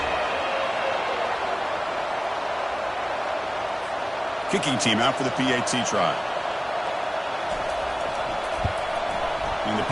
Kicking team out for the PAT try. And the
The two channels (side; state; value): both; identical; correlation 1.00